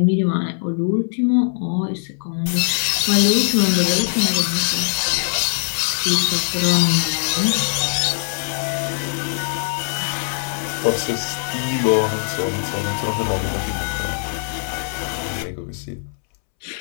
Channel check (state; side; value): silent; right; 65 dB below the other